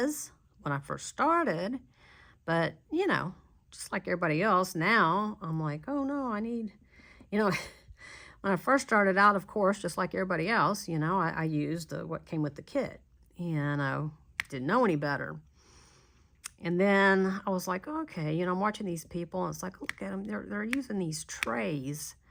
when I first started, but, you know, just like everybody else, now I'm like, oh, no, I need, you know, when I first started out, of course, just like everybody else, you know, I used what came with the kit, and I didn't know any better. And then I was like, okay, you know, I'm watching these people, and it's like, look at them, they're using these trays.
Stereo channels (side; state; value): both; identical; correlation 1.00